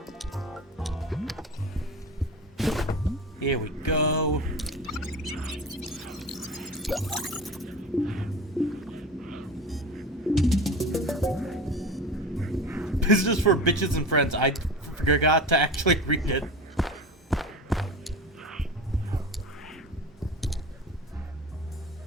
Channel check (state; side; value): normal; both; correlation 0.32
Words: Here we go. Business for bitches and friends. I forgot to actually read it.